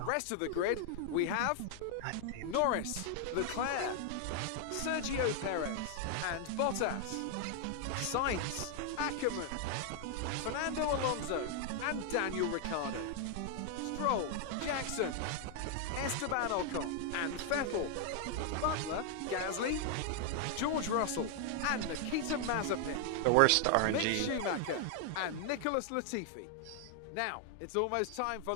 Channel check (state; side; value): different; both; correlation 0.00